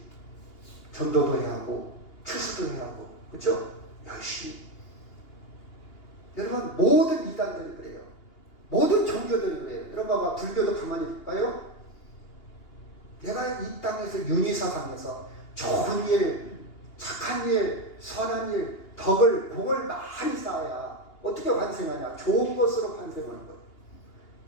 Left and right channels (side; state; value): right; late; 2.8 ms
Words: 전도도 해야 하고 추수도 해야 하고, 그렇죠? 열심히. 여러분, 모든 이단들이 그래요. 모든 종교들이 그래요. 여러분 봐봐, 불교도 가만히 볼까요? 내가 이 땅에서 윤희사상에서 좋은 일, 착한 일, 선한 일, 덕을, 공을 많이 쌓아야 어떻게 환생하냐? 좋은 것으로 환생하는 것.